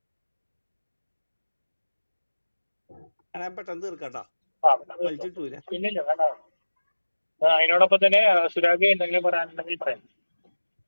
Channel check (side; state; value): both; inverted; correlation -1.00